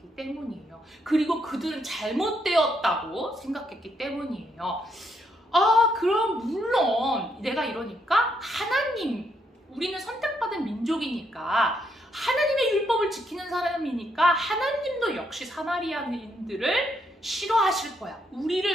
때문이에요. 그리고 그들은 잘못되었다고 생각했기 때문이에요. 그럼 물론 내가 이러니까 우리는 선택받은 민족이니까 하나님의 율법을 지키는 사람이니까 하나님도 역시 사마리아인들을 싫어하실 거야, 우리를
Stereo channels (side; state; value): both; normal; correlation 0.75